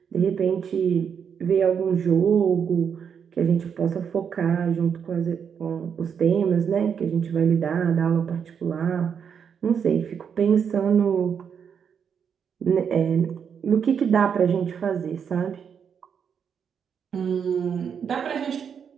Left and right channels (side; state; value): left; quieter; 7.3 dB